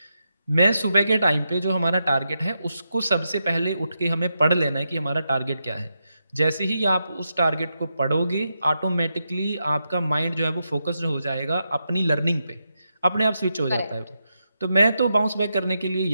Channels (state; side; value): inverted; both; correlation -0.86